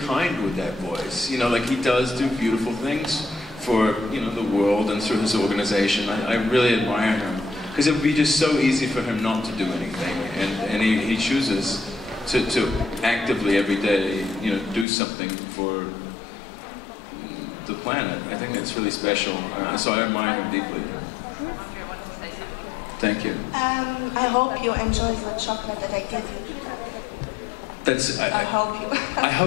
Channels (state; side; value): drops out; right; at 14.9 s